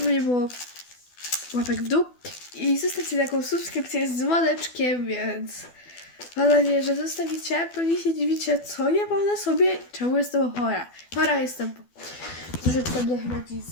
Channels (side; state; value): right; late; 12 ms